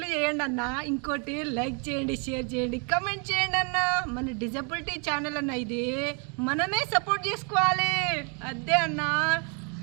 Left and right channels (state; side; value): quieter; left; 37.4 dB